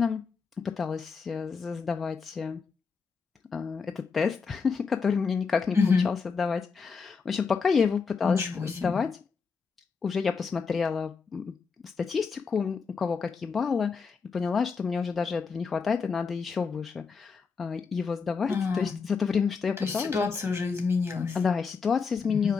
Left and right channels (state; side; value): quieter; right; 5.3 dB